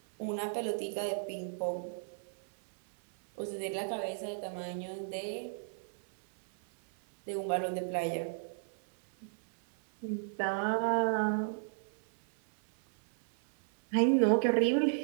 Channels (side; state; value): left; silent; 55 dB below the other